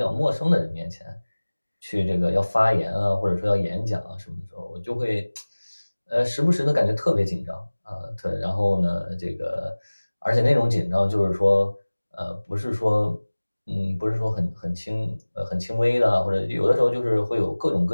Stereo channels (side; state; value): both; inverted; correlation -1.00